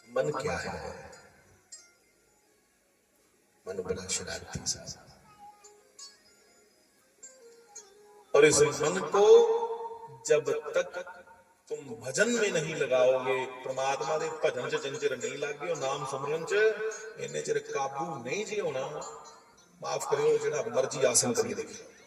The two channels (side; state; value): both; identical; correlation 1.00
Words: मन क्या है? मन बड़ा शरारती सा, और इस मन को जब तक तुम भजन में नहीं लगाओगे, परमात्मा दे भजन च जिन चिर नहीं लागे, नाम सिमरन च इन्ने चिर काबू नहीं जी होना। माफ करियो जेड़ा मर्जी आसन करिए, देखिए